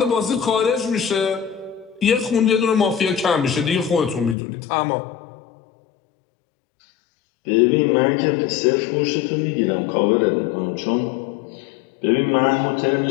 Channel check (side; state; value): right; drops out; at 4.4 s